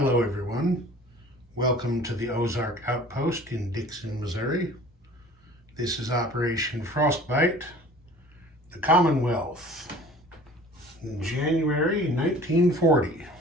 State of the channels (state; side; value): normal; both; correlation 0.47